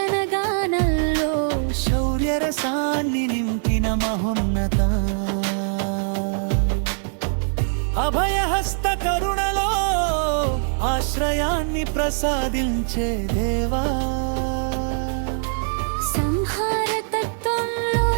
గానంలో శౌర్య రసాన్ని నింపిన మహోన్నత, అభయహస్త కరుణలో ఆశ్రయాన్ని ప్రసాదించే దేవా, సంహార తత్వంలో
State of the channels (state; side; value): silent; left; digital silence